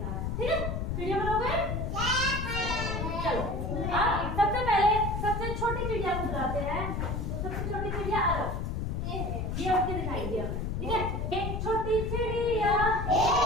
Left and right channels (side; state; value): left; noise; rumble, 2 dB below the sound